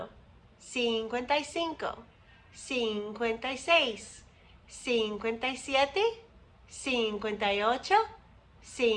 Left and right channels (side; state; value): both; identical; correlation 1.00